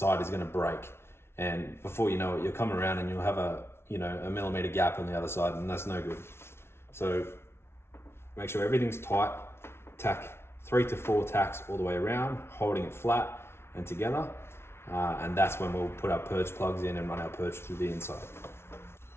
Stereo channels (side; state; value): right; late; 0.12 ms